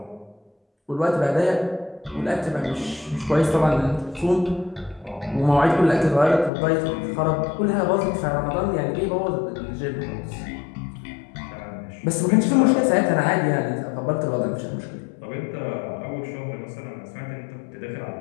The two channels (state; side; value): drops out; right; at 6.5 s